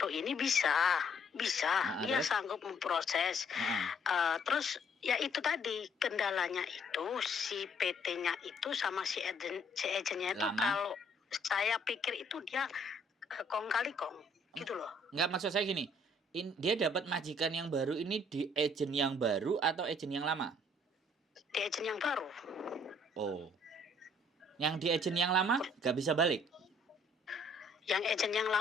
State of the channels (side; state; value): both; normal; correlation 0.63